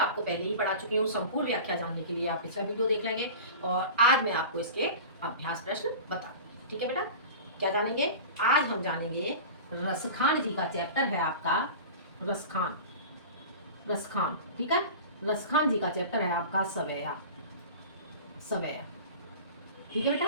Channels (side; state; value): both; inverted; correlation -0.35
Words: पहले ही पढ़ा चुकी हूँ। संपूर्ण व्याख्या जानने के लिए आप पिछला वीडियो देख लेंगे और आज मैं आपको इसके अभ्यास प्रश्न बता दूँगी। ठीक है बेटा, क्या जानेंगे? आज हम जानेंगे रसखान जी का चैप्टर है आपका रसखान। रसखान, ठीक है। रसखान जी का चैप्टर है आपका सवैया सवैया, ठीक है बेटा।